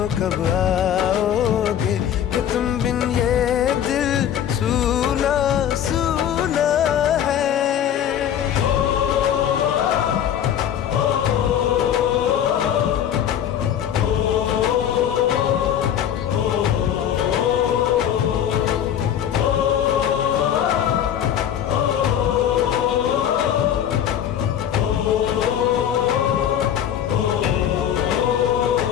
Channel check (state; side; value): quieter; right; 9.8 dB